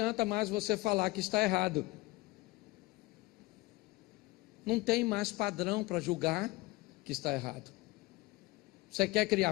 mais você falar que está errado. Não tem mais padrão para julgar que está errado. Você quer criar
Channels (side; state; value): right; quieter; 21.4 dB